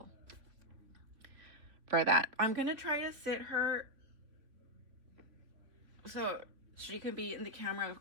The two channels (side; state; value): left; late; 3.5 ms